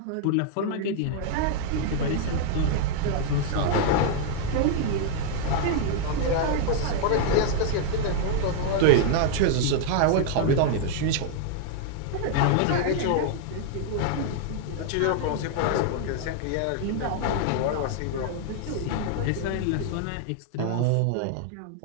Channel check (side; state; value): both; different; correlation 0.00